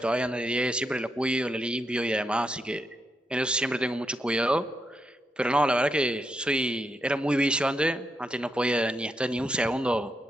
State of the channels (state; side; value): normal; both; correlation 0.82